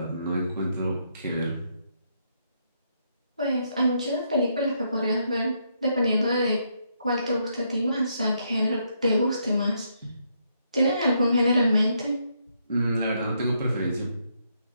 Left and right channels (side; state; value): both; inverted; correlation -0.76